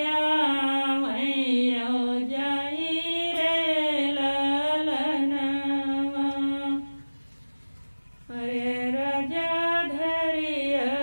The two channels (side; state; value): both; inverted; correlation -1.00